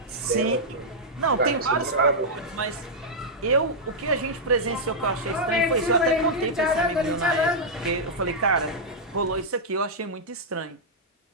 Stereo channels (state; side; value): normal; both; correlation -0.07